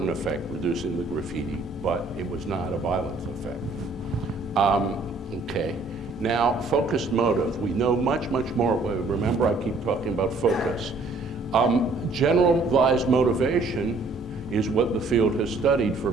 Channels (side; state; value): left; quieter; 3.4 dB